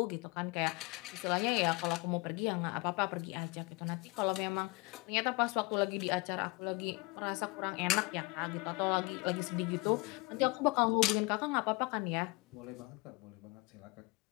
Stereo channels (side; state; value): right; quieter; 25.2 dB